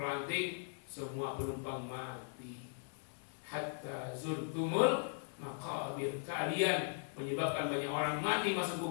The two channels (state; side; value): silent; right; digital silence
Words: semua penumpang mati. Hatta zurtumul maqabir, kalian menyebabkan banyak orang mati masuk